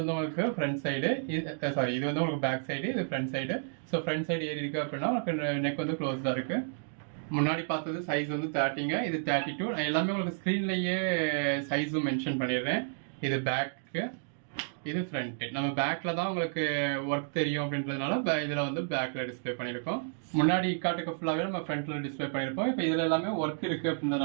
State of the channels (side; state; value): left; silent; digital silence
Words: உங்களுக்கு ஃப்ரண்ட் சைடு, இது வந்து உங்களுக்கு பேக் சைடு, இது front side. So front side ஏறி இருக்குது அப்படின்னா உங்களுக்கு நெக் வந்து க்ளோஸ்டாக இருக்குது. முன்னாடி பார்த்தது சைஸ் வந்து 30ங்க, இது 32. நான் எல்லாமே உங்களுக்கு ஸ்க்ரீன்லேயே சைஸும் மென்ஷன் பண்ணிடுறேன். இது பேக்கு, இது ஃப்ரண்ட்டு. நம்ம பேக்கில் தான் உங்களுக்கு ஒர்க் தெரியும் அப்படின்றதுனால இதில் வந்து பேக்கில் டிஸ்பிளே பண்ணியிருக்கோம். முன்னாடி காட்டுக்கு ஃபுல்லாகவே நம்ம ஃப்ரண்ட்டில் டிஸ்பிளே பண்ணியிருப்போம். இப்போ இதில் எல்லாமே ஒர்க் இருக்குது